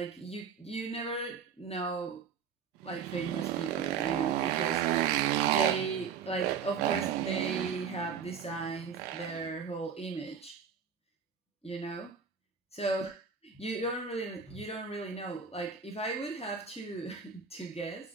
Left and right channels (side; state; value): left; quieter; 6.7 dB